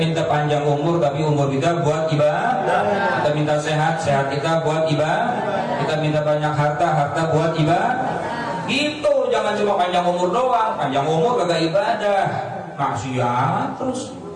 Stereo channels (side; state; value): both; identical; correlation 1.00